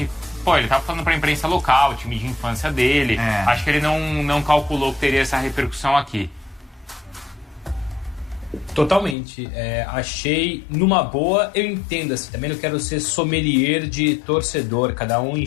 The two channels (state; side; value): drops out; right; at 9.2 s